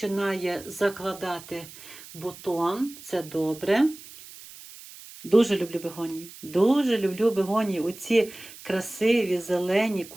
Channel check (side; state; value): right; noise; hiss, 17 dB below the sound